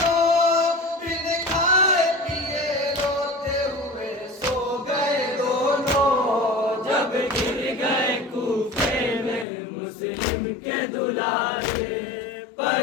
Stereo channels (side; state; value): right; drops out; at 9.5 s